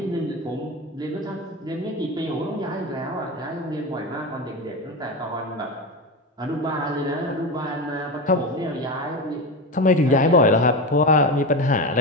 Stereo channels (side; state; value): both; normal; correlation 0.20